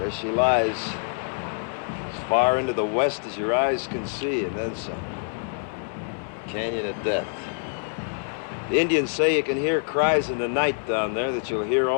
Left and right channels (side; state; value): right; silent; 58 dB below the other